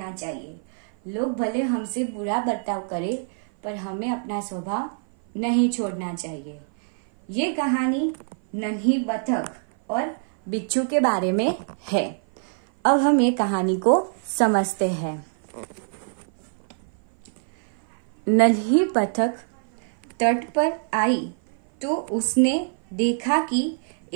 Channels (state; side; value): silent; left; 57 dB below the other